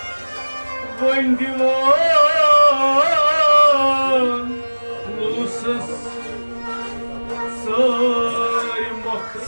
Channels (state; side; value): inverted; both; correlation -1.00